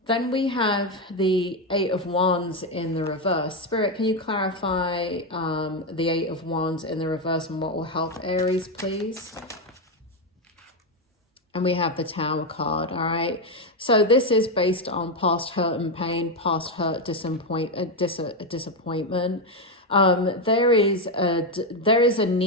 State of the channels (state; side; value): normal; both; correlation 0.07